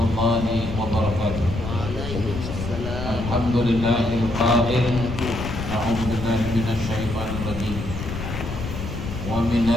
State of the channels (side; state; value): left; noise; rumble, 6 dB below the sound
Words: وبركاته. الحمد لله القائل أعوذ بالله من الشيطان الرجيم ومن